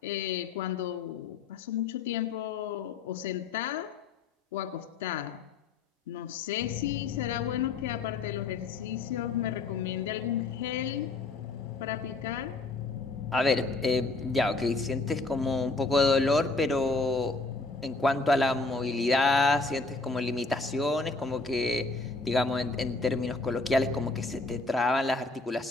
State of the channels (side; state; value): right; quieter; 3.6 dB